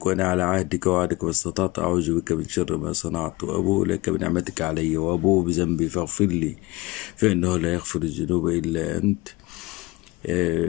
وأنا على عهدك ووعدك ما استطعت، أعوذ بك من شر ما صنعت، وأبوء لك بنعمتك علي وأبوء بذنبي فاغفر لي فإنه لا يغفر الذنوب إلا أنت.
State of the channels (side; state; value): right; quieter; 22.4 dB